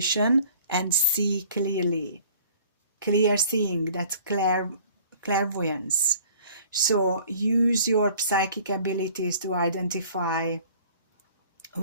and see clearly. Clear seeing, that's clairvoyance. So use your psychic abilities to identify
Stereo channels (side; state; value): both; inverted; correlation -0.52